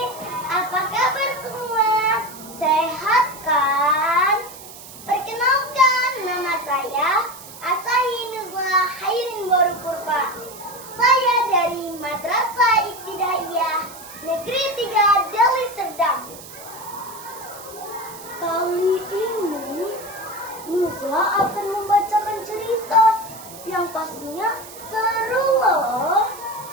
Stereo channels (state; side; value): noise; right; hiss, 16 dB below the sound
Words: Apa kabar semua? Sehat kan? Perkenalkan, nama saya Asahi Nuzla Hairin Boru Purba. Saya dari Madrasah Ibtidaiyah Negeri 3 Deli Serdang. Kali ini Nuzla akan membacakan cerita yang pastinya seru loh.